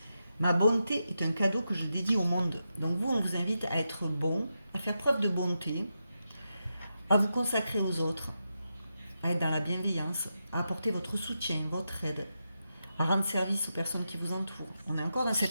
Ma bonté est un cadeau que je dédie au monde. Donc vous, on vous invite à être bon, à faire preuve de bonté, à vous consacrer aux autres, à être dans la bienveillance, à apporter votre soutien, votre aide, à rendre service aux personnes qui vous entourent. On est encore dans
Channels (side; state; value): both; inverted; correlation -0.87